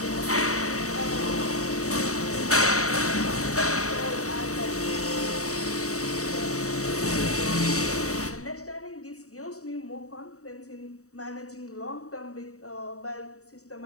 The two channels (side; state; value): right; late; 0.65 ms